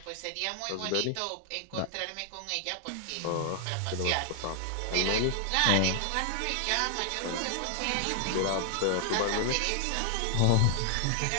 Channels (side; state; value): both; different; correlation 0.00